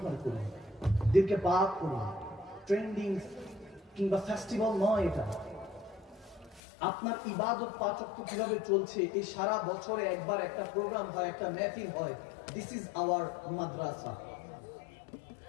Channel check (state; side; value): drops out; right; at 6.6 s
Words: করুন, দিলকে পাক করুন। ট্রেন্ডিং কিংবা ফেস্টিভ্যাল নয় এটা। আপনার ইবাদত পাঁচ ওয়াক্ত কিভাবে চলছে, এই সারা বছরে একবার একটা প্রোগ্রাম হয়, একটা মেহফিল হয়। This is our Madrasa.